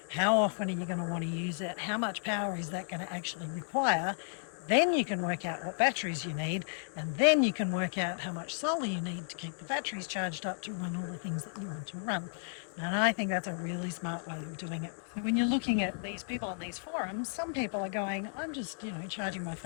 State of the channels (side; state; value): right; silent; digital silence